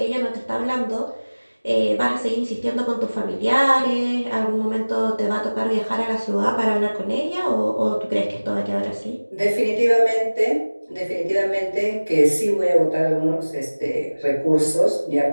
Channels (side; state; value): both; inverted; correlation -1.00